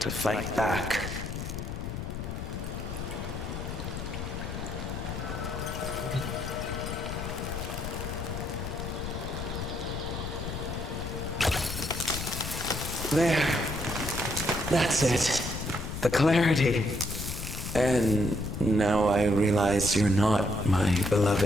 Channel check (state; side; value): noise; left; rumble, 6 dB below the sound